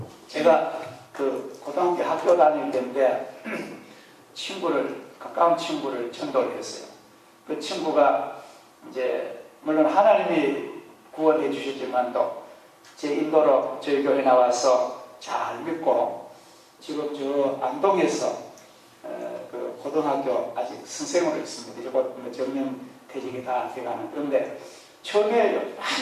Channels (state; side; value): identical; both; correlation 1.00